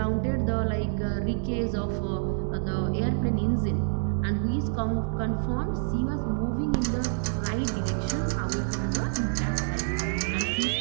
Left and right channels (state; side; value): silent; left; digital silence